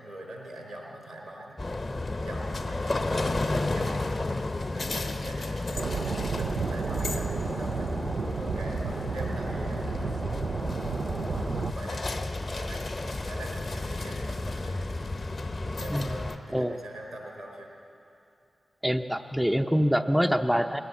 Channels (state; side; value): normal; both; correlation 0.93